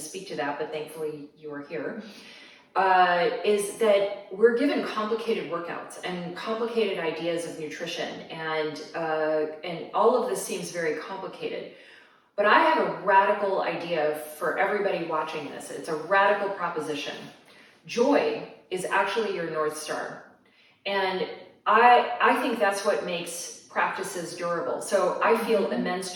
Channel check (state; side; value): identical; both; correlation 1.00